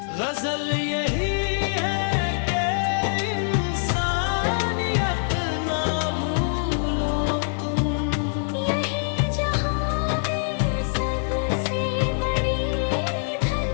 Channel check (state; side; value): silent; right; 62 dB below the other